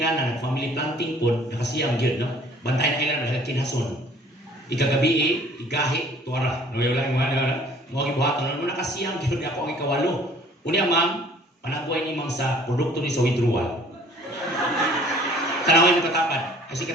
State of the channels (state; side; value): normal; both; correlation 0.54